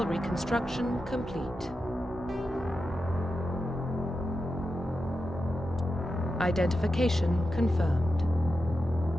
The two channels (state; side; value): normal; both; correlation 0.90